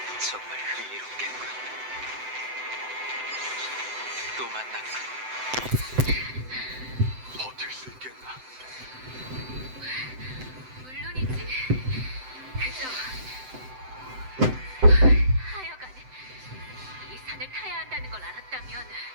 정말 흥미롭겠군. 또 만났군. 버틸 수 있겠나? 물론이지. 그저 하여간 이 산을 타야 한다는 걸 알았다면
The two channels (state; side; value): late; left; 7.8 ms